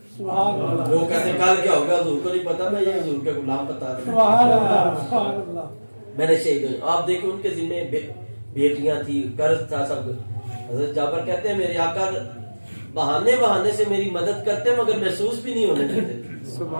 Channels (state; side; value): inverted; both; correlation -1.00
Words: وہ کہتے ہیں کل کیا ہوگا حضور کو نہیں پتا، میں یہ حضور کے غلام بتا رہا ہوں، میں نے شہید ہو۔ آپ دیکھیں ان کے ذمہ بیٹیاں تھی، قرض تھا، سب کچھ۔ حضرت جابر کہتے ہیں میرے آقا بہانے سے میری مدد کرتے مگر محسوس بھی نہیں ہونے دیتے۔